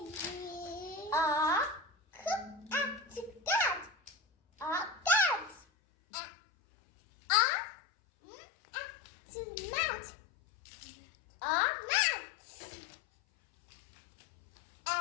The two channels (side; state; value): right; drops out; at 5.6 s